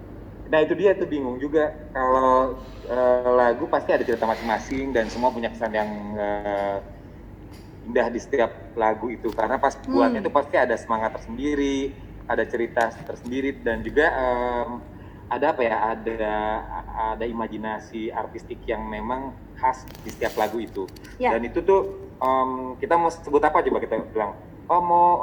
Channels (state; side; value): identical; both; correlation 1.00